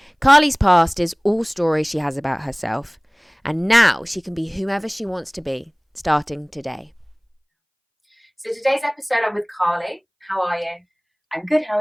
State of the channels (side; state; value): both; identical; correlation 1.00